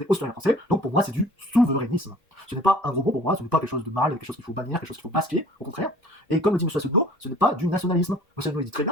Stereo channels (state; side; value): normal; both; correlation 0.50